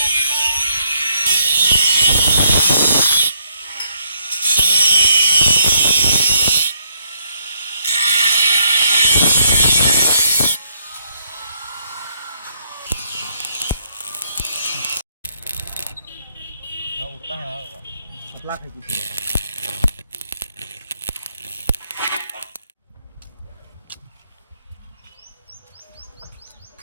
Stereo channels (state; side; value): inverted; both; correlation -0.72